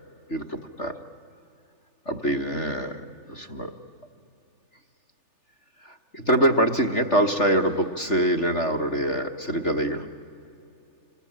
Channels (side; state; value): right; late; 3.4 ms